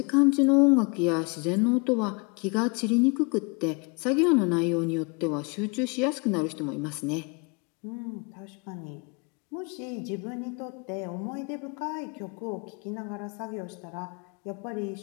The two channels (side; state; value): right; quieter; 31.8 dB